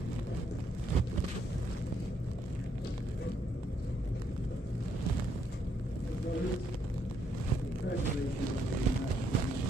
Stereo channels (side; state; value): both; normal; correlation 0.74